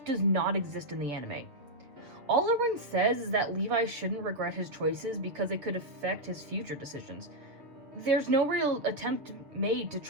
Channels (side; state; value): left; late; 6.9 ms